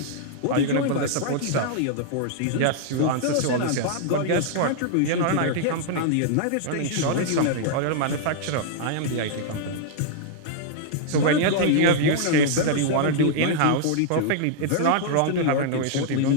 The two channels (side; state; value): both; different; correlation -0.01